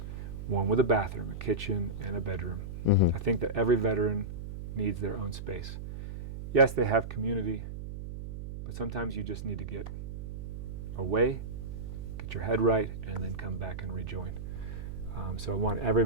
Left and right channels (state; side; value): noise; right; hum, 8 dB below the sound